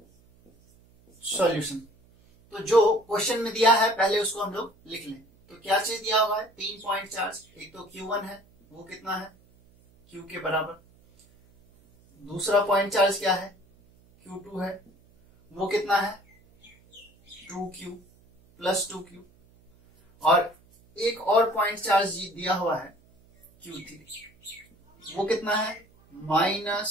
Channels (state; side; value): noise; right; hum, 30 dB below the sound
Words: सॉल्यूशन। तो जो क्वेश्चन में दिया है पहले उसको हम लोग लिख लें। तो क्या चीज दिया हुआ है, 3 पॉइंट चार्ज। एक तो Q1 है, वो कितना है, Q के बराबर। दूसरा पॉइंट चार्ज क्या है, Q2 है, वो कितना है, 2Q +2Q। और एक और पॉइंट चार्ज दिया हुआ है Q3, वो कितना है,